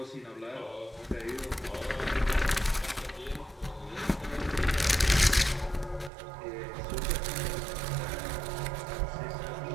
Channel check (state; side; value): drops out; left; at 6.1 s